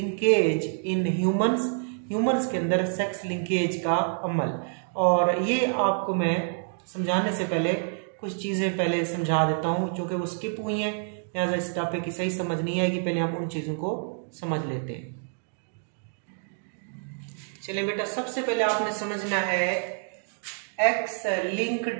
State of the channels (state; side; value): silent; left; 60 dB below the other